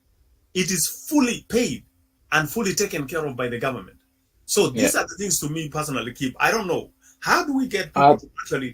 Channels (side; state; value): both; identical; correlation 1.00